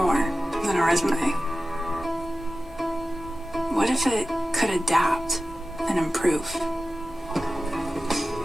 than a resume? What if it could adapt and improve?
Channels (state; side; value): normal; both; correlation 0.95